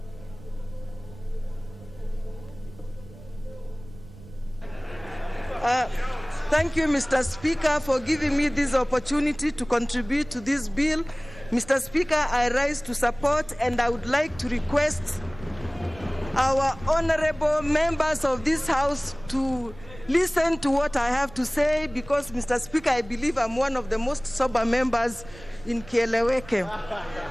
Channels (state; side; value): noise; right; rumble, 19 dB below the sound